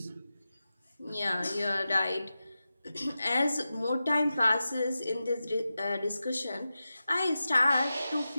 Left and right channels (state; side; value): inverted; both; correlation -0.93